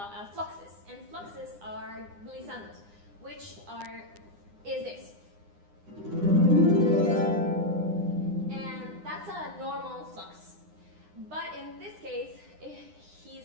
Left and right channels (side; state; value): left; late; 9.8 ms